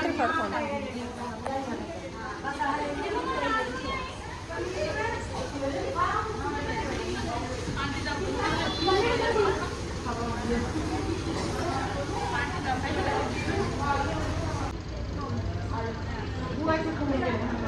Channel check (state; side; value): identical; both; correlation 1.00